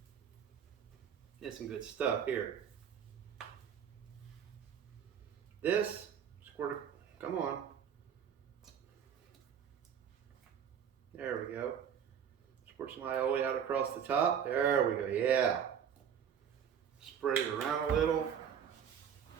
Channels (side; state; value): left; quieter; 8.2 dB